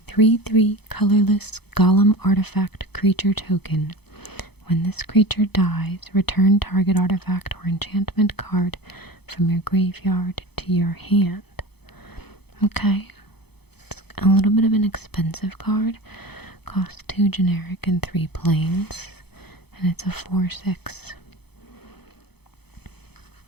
3/3 colorless golem artifact creature token. When this creature dies, return target artifact or enchantment card from your graveyard to your hand. Okay. It's a little bit of an expensive card. Costs 2 generic and 3 plains. And it's a 4/6.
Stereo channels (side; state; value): right; late; 0.98 ms